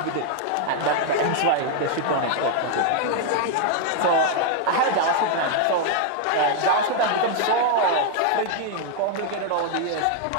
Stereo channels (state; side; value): different; both; correlation 0.00